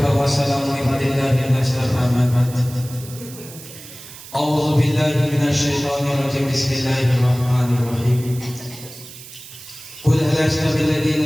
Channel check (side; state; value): right; noise; hiss, 16 dB below the sound